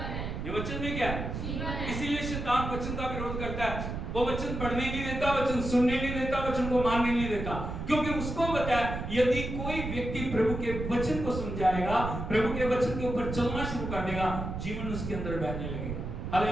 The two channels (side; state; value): right; noise; rumble, 5 dB below the sound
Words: ये वचन में क्या है? इसीलिए शैतान वचन का विरोध करता है। वो वचन पढ़ने नहीं देता, वचन सुनने नहीं देता, वचन को मानने नहीं देता, क्योंकि उसको पता है यदि कोई व्यक्ति प्रभु के वचन को सुन जाएगा, प्रभु के वचन के ऊपर चलना शुरू कर देगा, जीवन उसके अंदर बहने लगेगा।